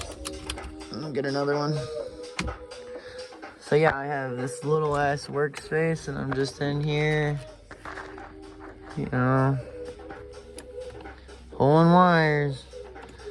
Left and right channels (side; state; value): both; identical; correlation 1.00